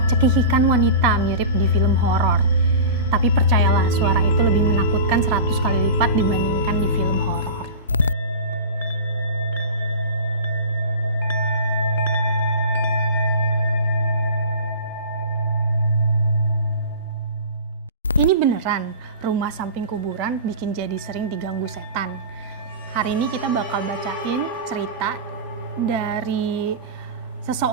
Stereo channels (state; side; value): inverted; both; correlation -0.32